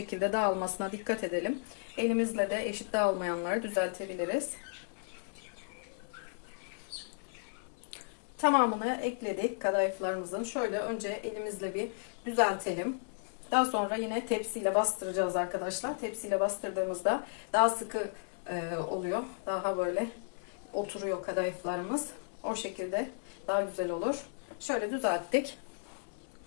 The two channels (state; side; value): silent; right; 55 dB below the other